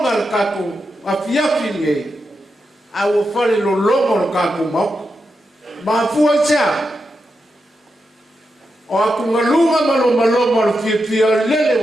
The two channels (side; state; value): both; normal; correlation 0.87